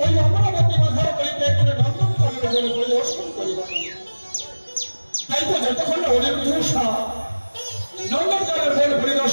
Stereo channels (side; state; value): both; inverted; correlation -1.00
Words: ওই অমরাবতী মাথার বাড়িতে করে নন্দনকানন পরিদর্শন করিবার। তাই তো যতক্ষণ অনিরুদ্ধ ঘোষা নন্দনকানন